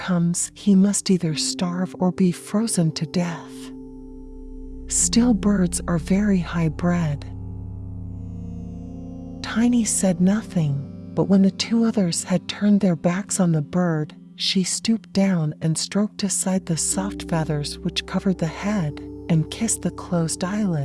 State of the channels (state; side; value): identical; both; correlation 1.00